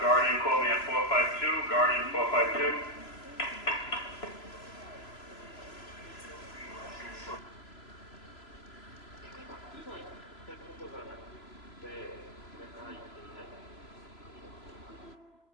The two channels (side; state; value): right; late; 3.0 ms